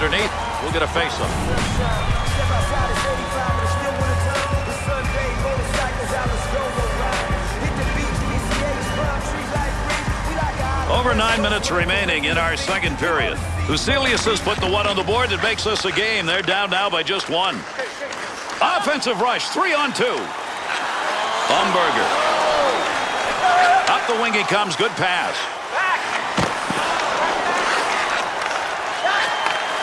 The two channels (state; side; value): identical; both; correlation 1.00